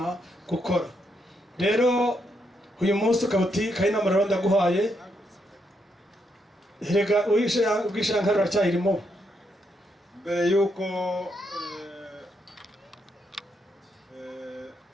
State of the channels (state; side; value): normal; both; correlation 0.78